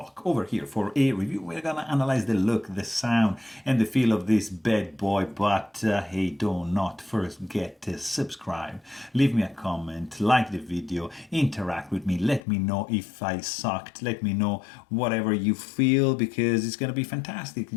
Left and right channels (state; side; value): drops out; right; at 12.4 s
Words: over here for a review. We're gonna analyze the look, the sound and the feel of this bad boy, but hey, do not forget to subscribe, leave me a comment, like the video, interact with me, let me know if I sucked, let me know whatever you feel because it's gonna be fantastic.